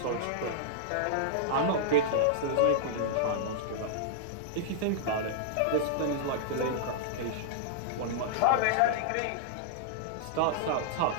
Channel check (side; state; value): both; different; correlation -0.01